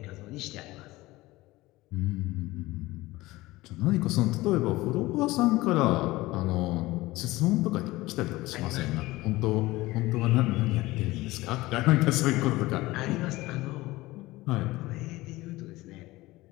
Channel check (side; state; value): right; quieter; 19.2 dB